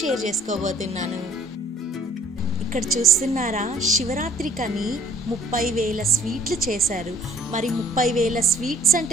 చేసుకోబోతున్నాను. ఇక్కడ చూస్తున్నారా, శివరాత్రికని 30,000 స్వీట్లు చేశారు. మరి 30,000 స్వీట్స్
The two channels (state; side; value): normal; both; correlation 0.57